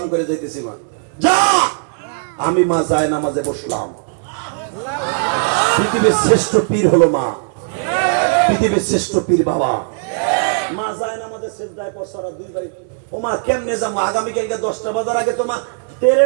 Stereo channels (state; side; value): silent; left; 67 dB below the other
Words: করে যাইতেছি। মা যা, আমি মা যায় নামাজে বসলাম। পৃথিবীর শ্রেষ্ঠ পীর হলো মা, পৃথিবীর শ্রেষ্ঠ পীর বাবা। মা যায় না আমাদের সেজদায় পড়ছরা দুই ভাই। ও মা কেমনে যাবো? আগামী কালকে 10টা বাজার আগে তোমা